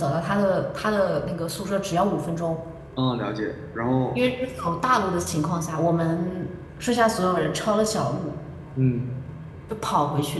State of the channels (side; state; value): both; identical; correlation 1.00